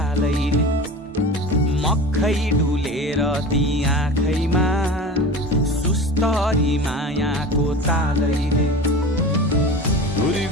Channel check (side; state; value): both; normal; correlation 0.33